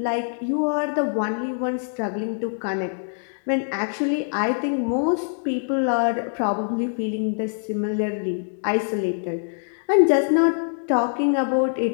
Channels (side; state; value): right; silent; digital silence